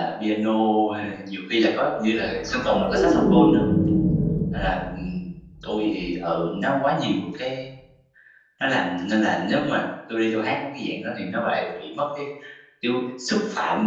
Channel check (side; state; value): both; identical; correlation 1.00